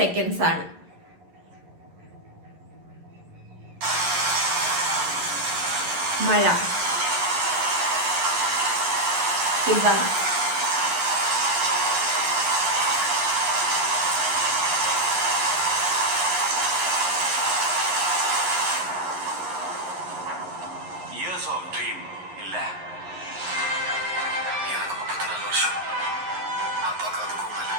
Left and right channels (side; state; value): left; late; 11 ms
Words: ആണ്. മഴ, Years of dream இல்ல எனக்கு 34 வருஷம் அப்பாக்கு அதுக்கும் மேல.